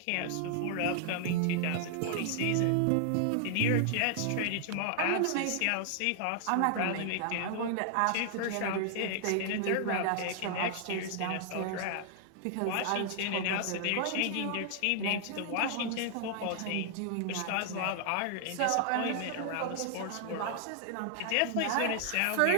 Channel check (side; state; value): both; different; correlation 0.00